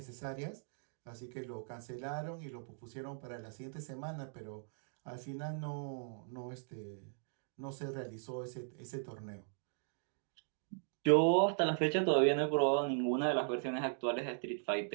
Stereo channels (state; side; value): silent; left; digital silence